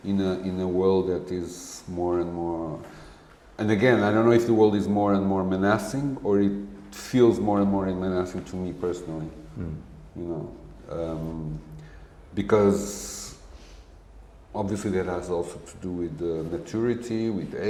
in a world that is more and more. And again, I don't know if the world is more and more menacing or it feels more and more menacing to me personally. You know, because obviously that has also to do with maturity, with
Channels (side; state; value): both; identical; correlation 1.00